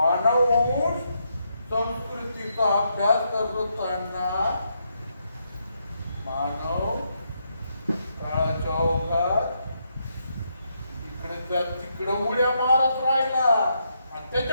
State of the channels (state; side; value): inverted; both; correlation -0.79